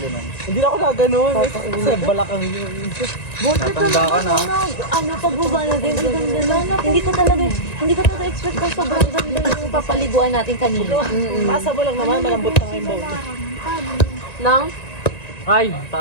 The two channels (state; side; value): late; right; 1.9 ms